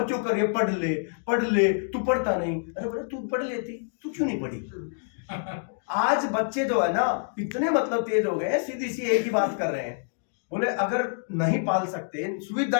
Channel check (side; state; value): right; silent; digital silence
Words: कर रही है, पढ़ ले, तू पढ़ता नहीं। अरे बोले तू पढ़ लेती, तू क्यों नहीं पढ़ी? आज बच्चे जो है ना इतने मतलब तेज हो गए, सीधी सी एक ही बात कर रहे हैं, बोले अगर नहीं पाल सकते,